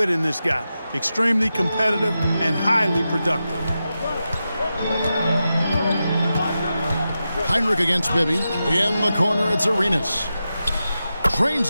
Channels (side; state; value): both; inverted; correlation -0.90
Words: in this guy. Extremely competitive and highly productive. Heinrich against Bibby. In the corner, it's Arenas.